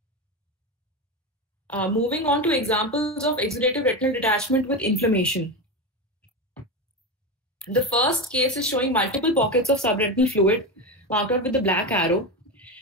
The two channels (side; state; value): both; normal; correlation 0.18